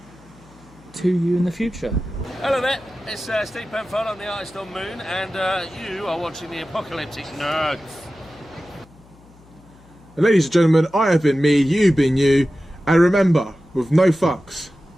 to you in the future. Hello there, it's Steve Penfold on the Artist on Moon, and you are watching the Apocalyptic Nerds. And ladies and gentlemen, I have been me, you've been you, and remember, with no fucks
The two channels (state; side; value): noise; left; hum, 26 dB below the sound